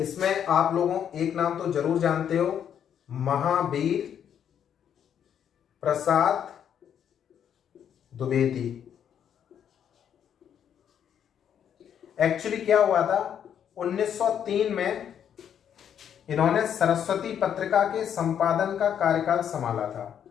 आप लोगों एक नाम तो जरूर जानते हो, महावीर प्रसाद द्विवेदी। एक्चुअली क्या हुआ था, 1903 में इन्होंने सरस्वती पत्रिका के संपादन का कार्यकाल संभाला था।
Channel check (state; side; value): quieter; right; 8.9 dB